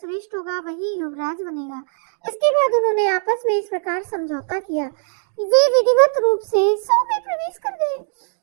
होगा, वही युवराज बनेगा। इसके बाद उन्होंने आपस में इस प्रकार समझौता किया। वे विधिवत रूप से सौ में प्रवेश कर गए।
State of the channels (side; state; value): left; silent; digital silence